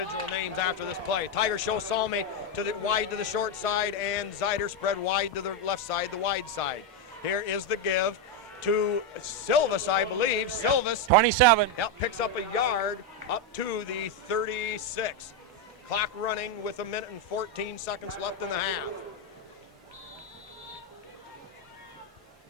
names after this play. Tiger show Salmi to the wide to the short side, and Zeider spread wide to the left side, the wide side. Here is the give to Silvis, I believe. Silvis, 27. Yep, picks up a yard up to the 36. Clock running with 1 minute and 14 seconds left in the half.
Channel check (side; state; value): both; normal; correlation 0.05